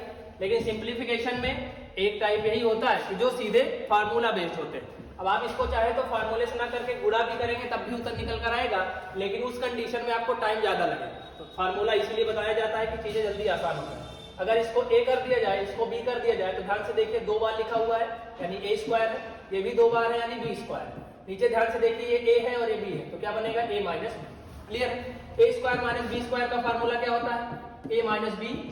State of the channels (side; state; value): both; identical; correlation 1.00